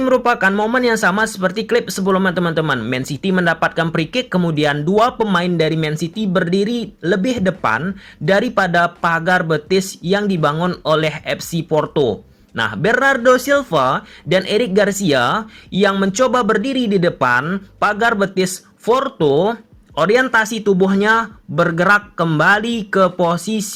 merupakan momen yang sama seperti klip sebelumnya, teman-teman. Man City mendapatkan free kick, kemudian dua pemain dari Man City berdiri lebih depan daripada pagar betis yang dibangun oleh FC Porto. Nah, Bernardo Silva dan Eric Garcia yang mencoba berdiri di depan pagar betis Porto, orientasi tubuhnya bergerak kembali ke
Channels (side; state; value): both; identical; correlation 1.00